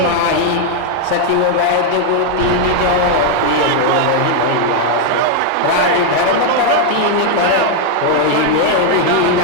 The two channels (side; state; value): both; different; correlation 0.00